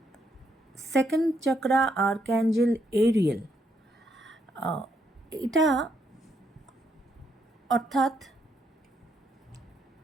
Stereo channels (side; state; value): both; normal; correlation 0.75